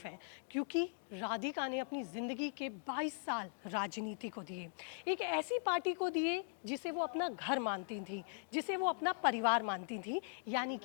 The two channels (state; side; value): silent; right; digital silence